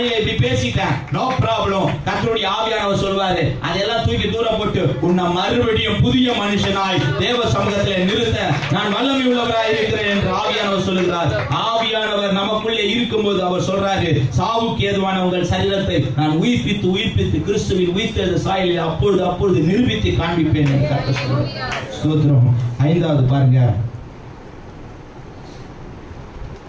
இப்படி பேசிட்டேன், நோ ப்ராப்ளம். கர்த்தருடைய ஆவியானவர் சொல்வாரு, அதெல்லாம் தூக்கி தூரம் போட்டு உன்னை மறுபடியும் புதிய மனுஷனாய் தேவ சமூகத்திலே நிறுத்த நான் வல்லமை உள்ளவராய் இருக்கிறேன் என்று ஆவியானவர் சொல்லுகிறார். ஆவியானவர் நமக்குள்ளே இருக்கும்போது அவர் சொல்றாரு, சாவுக்கு ஏதுவான உங்கள் சரீரத்தை நான் உயிர்ப்பித்து கிறிஸ்துவின் உயிர்த்தெழுந்த சாயலில் அப்பொழுது நிரூபித்து காண்பிப்பேன் என்று கர்த்தர் சொல்றார். ஸ்தோத்திரம். 5வது பாருங்க,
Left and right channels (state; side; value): identical; both; correlation 1.00